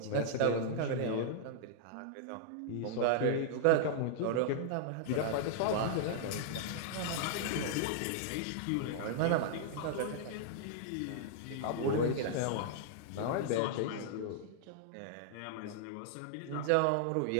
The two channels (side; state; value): both; different; correlation -0.01